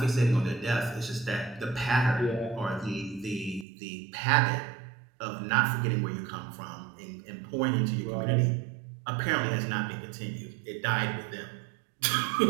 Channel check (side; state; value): left; drops out; at 3.7 s